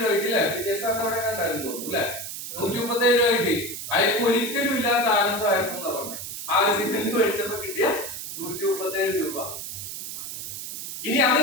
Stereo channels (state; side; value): noise; right; hiss, 8 dB below the sound